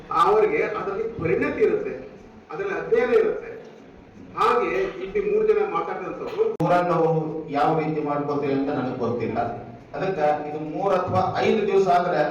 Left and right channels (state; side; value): identical; both; correlation 1.00